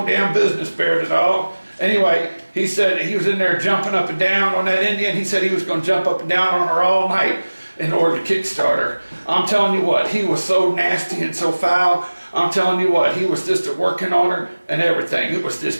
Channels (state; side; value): inverted; both; correlation -1.00